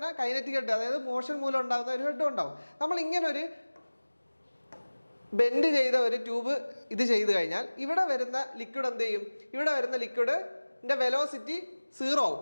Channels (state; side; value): inverted; both; correlation -1.00